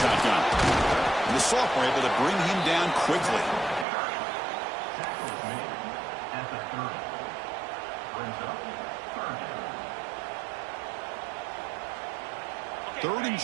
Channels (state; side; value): drops out; left; at 3.9 s